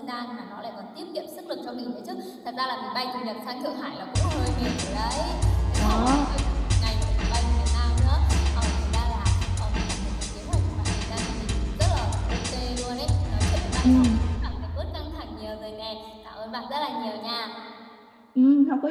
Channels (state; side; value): identical; both; correlation 1.00